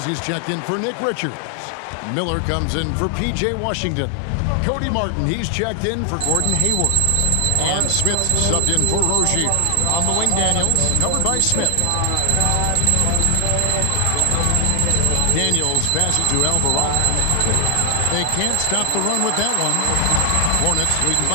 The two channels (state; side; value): different; both; correlation 0.00